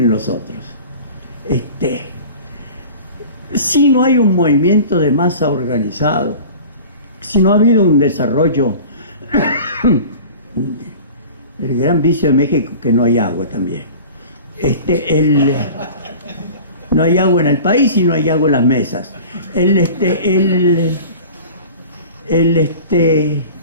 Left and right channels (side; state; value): both; inverted; correlation -0.39